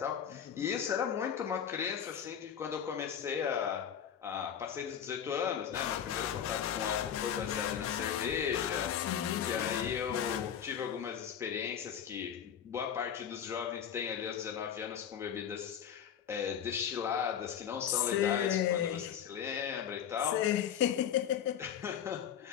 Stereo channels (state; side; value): quieter; right; 8.8 dB